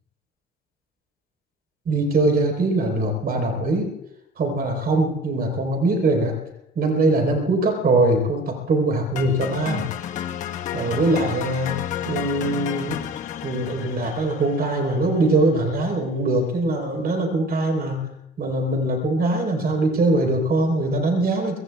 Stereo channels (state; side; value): normal; both; correlation 0.44